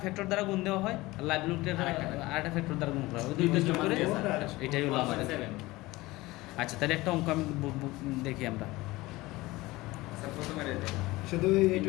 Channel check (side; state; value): right; quieter; 20.1 dB